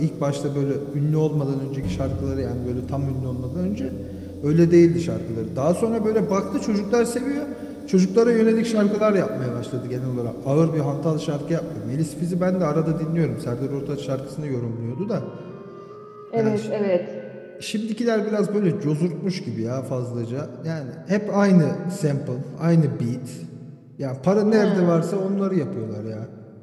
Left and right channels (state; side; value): identical; both; correlation 1.00